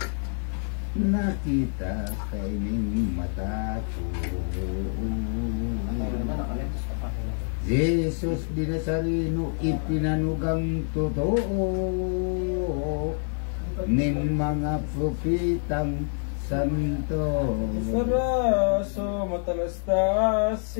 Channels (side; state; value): right; silent; 60 dB below the other